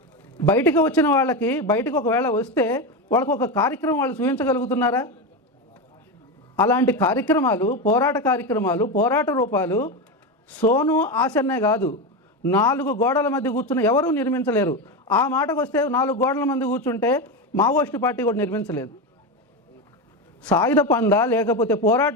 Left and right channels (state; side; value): normal; both; correlation 0.16